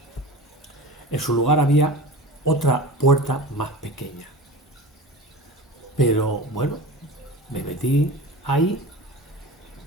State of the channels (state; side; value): normal; both; correlation 0.34